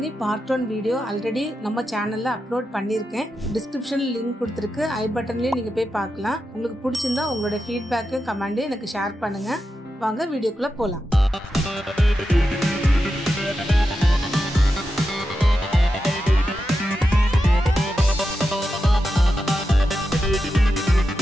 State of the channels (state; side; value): normal; both; correlation 0.89